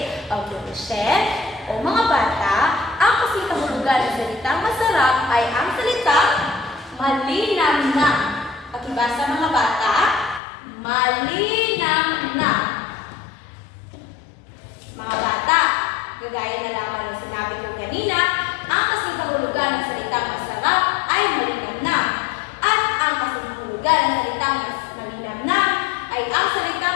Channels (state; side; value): drops out; right; at 10.4 s